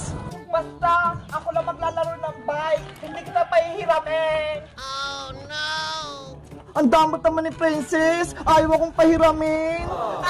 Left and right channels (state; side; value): identical; both; correlation 1.00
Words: Basta, ako lang maglalaro ng bike. Hindi kita pahihiramin. Oh, no! Ang damot naman ni Princess. Ayaw akong pahiramin.